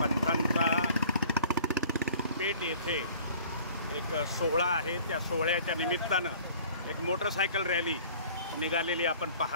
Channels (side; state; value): both; inverted; correlation -0.51